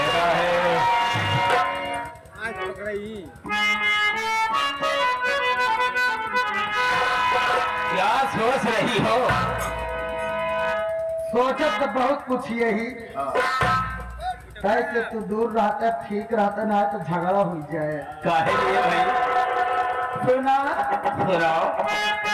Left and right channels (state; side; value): identical; both; correlation 1.00